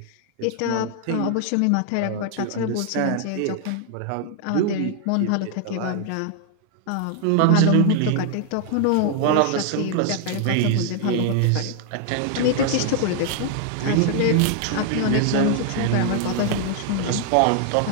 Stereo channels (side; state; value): both; different; correlation 0.00